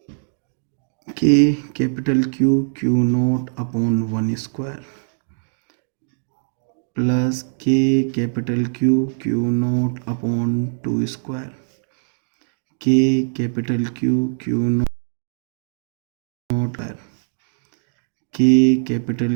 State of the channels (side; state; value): left; silent; digital silence